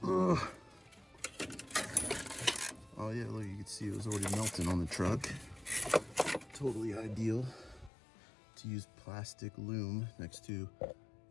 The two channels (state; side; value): drops out; right; at 7.9 s